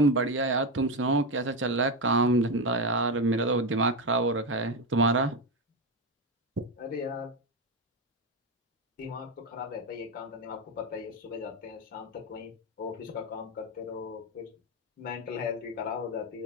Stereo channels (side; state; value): both; normal; correlation 0.12